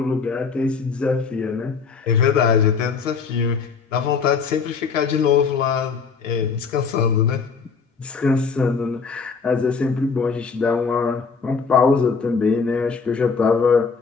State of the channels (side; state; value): right; quieter; 5.3 dB